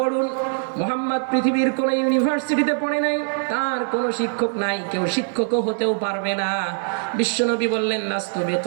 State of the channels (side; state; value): left; silent; 60 dB below the other